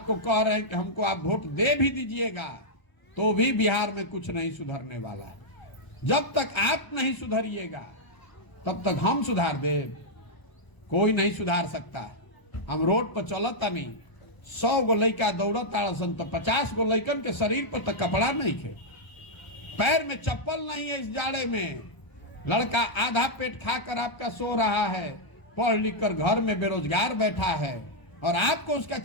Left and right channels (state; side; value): late; right; 1.0 ms